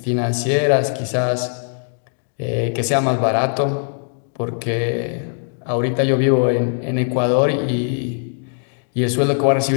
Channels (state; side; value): silent; right; digital silence